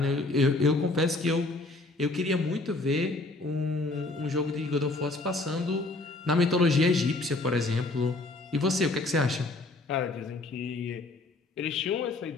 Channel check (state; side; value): quieter; right; 3.0 dB